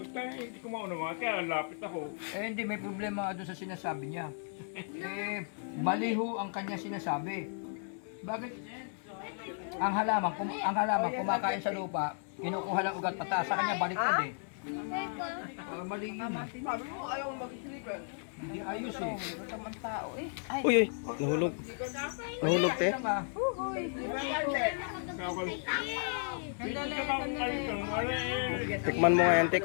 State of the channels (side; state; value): right; silent; 55 dB below the other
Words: Kaya hindi ko maunawa, kaya lapit ako. Eh hindi, may problema doon sa sinasabi niya. Eh, maliho ang kanya sinasabi. Bakit? Ang halaman kumakain sa lupa, kinukuha lang ugat pataas. Sa kanya baliktad eh. Mali yun. Sabi mo, ayaw mag-sleeper. Hindi ayos eh. Tamang tao eh. Ay, Uy, uy, nahulog. Nahulog, te. Lang, ah. Tikman mo nga yan, te,